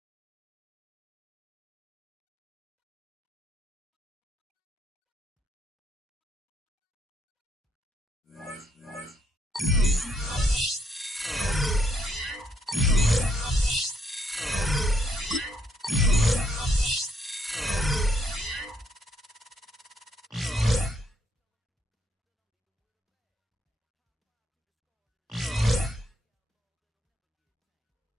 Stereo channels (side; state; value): both; normal; correlation 0.73